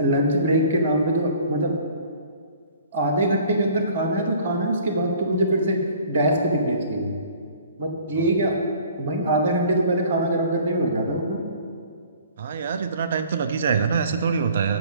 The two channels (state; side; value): inverted; both; correlation -0.51